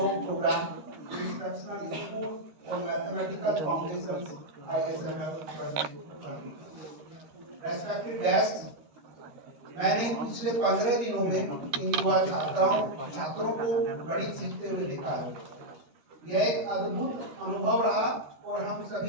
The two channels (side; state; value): left; late; 13 ms